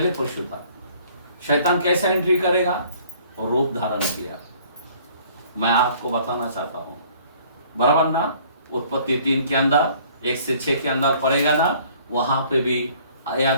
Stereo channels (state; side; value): inverted; both; correlation -0.56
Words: पशु था। शैतान कैसे एंट्री करेगा? रूप धारण किया। मैं आपको बताना चाहता हूं, बराबर ना? उत्पत्ति 3 के अंदर 1 से 6 के अंदर पड़ेगा ना, वहां पे भी